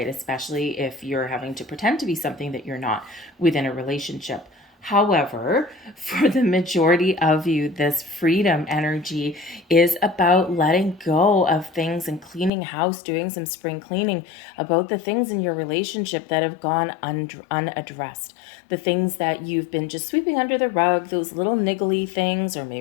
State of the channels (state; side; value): drops out; right; at 12.5 s